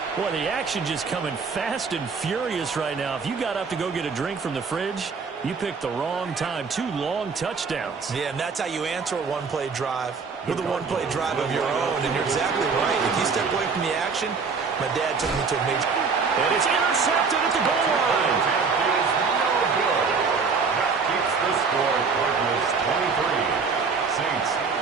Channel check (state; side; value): quieter; left; 5.1 dB